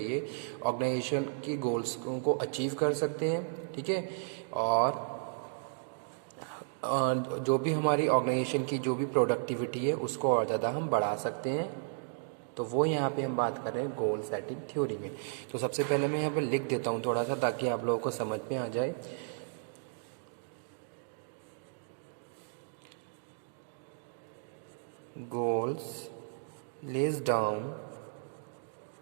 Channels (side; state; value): left; silent; digital silence